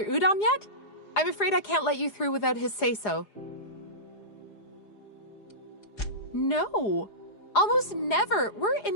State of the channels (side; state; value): right; late; 4.8 ms